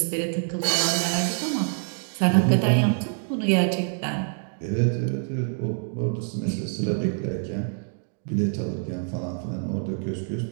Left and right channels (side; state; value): left; silent; 57 dB below the other